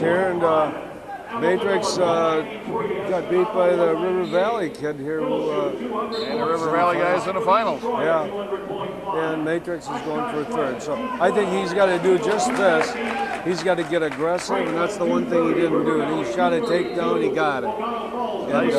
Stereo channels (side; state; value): both; identical; correlation 1.00